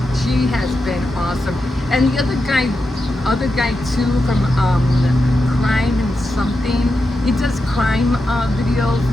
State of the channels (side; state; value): both; normal; correlation 0.88